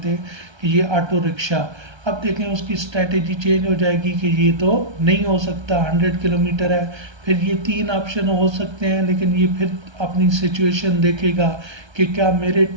कि ये ऑटो रिक्शा। अब देखें उसकी स्ट्रेटेजी चेंज हो जाएगी कि ये तो नहीं हो सकता, 100 किलोमीटर है। फिर ये 3 ऑप्शन हो सकते हैं, लेकिन ये फिर अपनी सिचुएशन देखेगा कि क्या मेरे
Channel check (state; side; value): late; left; 1.3 ms